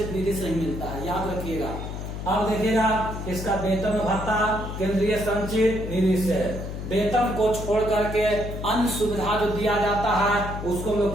निधि से ही मिलता है, याद रखिएगा। अब देखिएगा, इसका वेतन भत्ता केंद्रीय संचित निधि से। वेतन को छोड़ करके अन्य सुविधा जो दिया जाता है उसको हम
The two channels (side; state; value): left; noise; hum, 7 dB below the sound